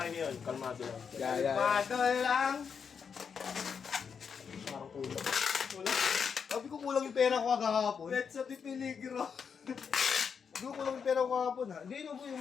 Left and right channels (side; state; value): right; quieter; 6.5 dB